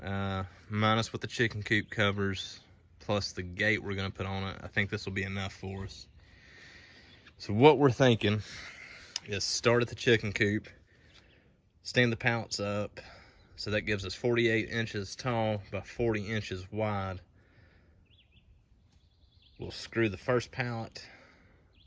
minus what the chicken coop covers, plus the gate we're going to put on it, I think this will be enough for us. So what we're thinking is start at the chicken coop, stand the pallets up, so that gives us 48 inches tall by 40 inches wide. We'll screw the first pallet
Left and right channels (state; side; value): identical; both; correlation 1.00